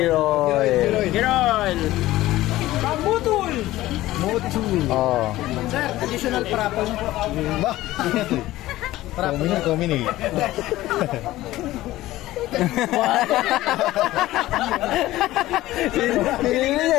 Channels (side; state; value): right; quieter; 16.3 dB